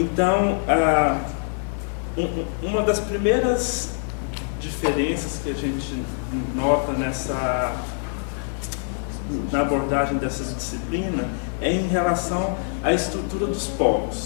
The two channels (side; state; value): right; silent; digital silence